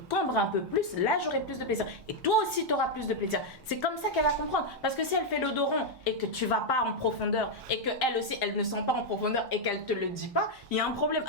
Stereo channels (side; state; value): both; normal; correlation 0.00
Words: un peu plus, là, j'aurai plus de plaisir. Et toi aussi, tu auras plus de plaisir. C'est comme ça qu'elle va comprendre. Parce que si elle fait le dos rond et que tu vas pas en profondeur, et qu'elle aussi, elle ne sent pas en profondeur et qu'elle te le dit pas, il y a un problème.